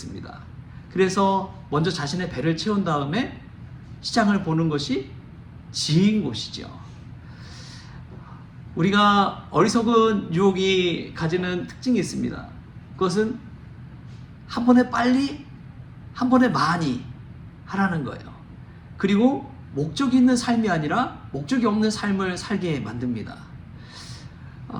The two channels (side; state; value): both; identical; correlation 1.00